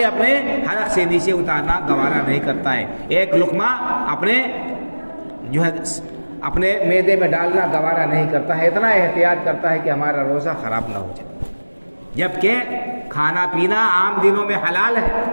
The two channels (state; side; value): inverted; both; correlation -1.00